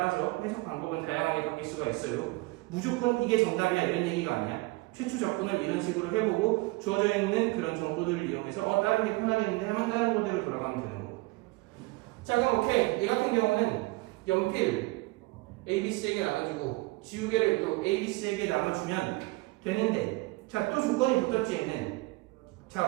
해석 방법은 다양하게 바뀔 수가 있어요. 무조건 이게 정답이야 이런 얘기가 아니야. 최초 접근을 이런 식으로 해보고 주어져 있는 그런 정보들을 이용해서 다른 게 편하겠는데 하면 다른 모델로 돌아가면 되는 거고. 자, 그럼 오케이. 얘 같은 경우는 연필 A, B, C에게 나눠주고 지우개를 또 A, B, C에게 나눠주면 되는데, 자, 또 조건이 붙었지 얘는.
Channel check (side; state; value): left; quieter; 23.0 dB